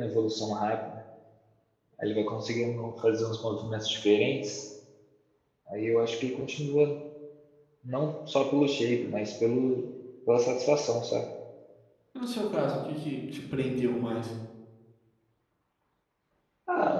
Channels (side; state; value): both; identical; correlation 1.00